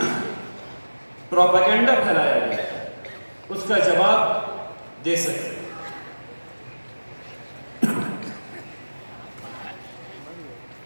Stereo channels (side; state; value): both; inverted; correlation -1.00